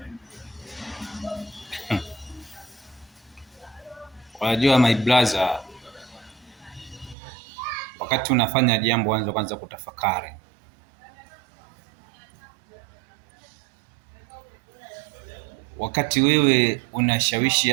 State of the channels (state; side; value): drops out; left; at 7.2 s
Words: Unajua my brother, wakati unafanya jambo anza kwanza kutafakari. Wakati wewe unashawishi